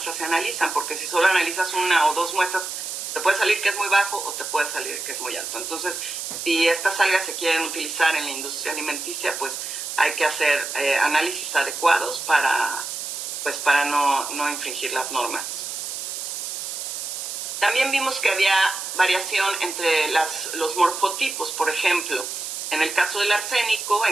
se analizan, porque si solo analizas una o dos muestras, te puede salir que es muy bajo o te puede salir que es muy alto. Entonces, si estas algas se quieren utilizar en la industria alimenticia, pues hay que hacer análisis adecuados para no infringir las normas. También vimos que había variación entre los morfotipos. Por ejemplo, en el caso del arsénico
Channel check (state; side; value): noise; right; hiss, 6 dB below the sound